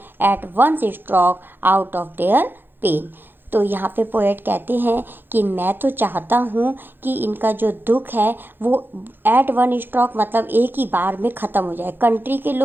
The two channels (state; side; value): late; left; 0.098 ms